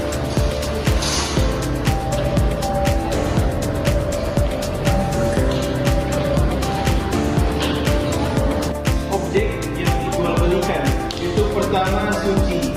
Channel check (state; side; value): identical; both; correlation 1.00